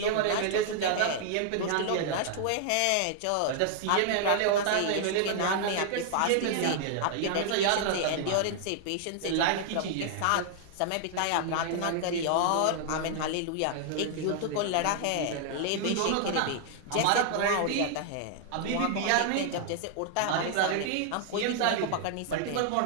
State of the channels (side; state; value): both; different; correlation 0.00